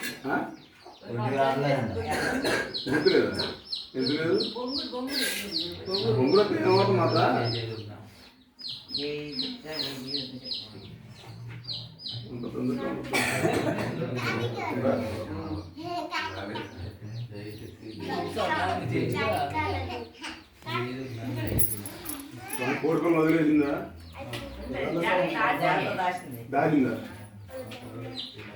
గుర్తులేదా ఎందుకు లేదు బొంగులకు ఏమవుతుంది మాట కోరుకొని వదిలేసిందా దాచిందా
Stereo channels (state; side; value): identical; both; correlation 1.00